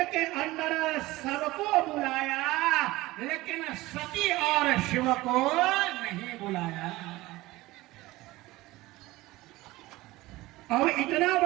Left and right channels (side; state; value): left; quieter; 19.0 dB